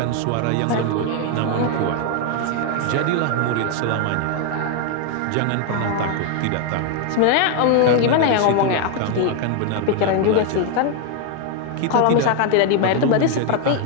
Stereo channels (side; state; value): both; different; correlation 0.01